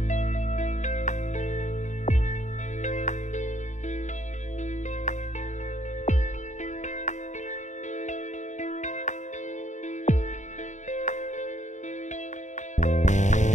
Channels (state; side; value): late; right; 0.35 ms